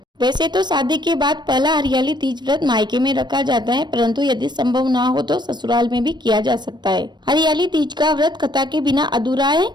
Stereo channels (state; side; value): late; left; 0.22 ms